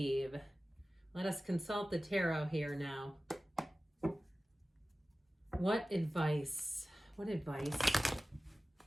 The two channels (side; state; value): both; normal; correlation 0.96